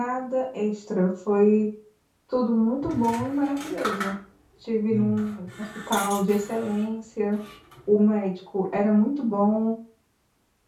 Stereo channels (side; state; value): both; identical; correlation 1.00